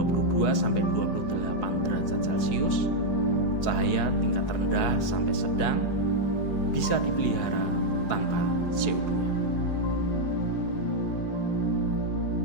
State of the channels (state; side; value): late; right; 4.8 ms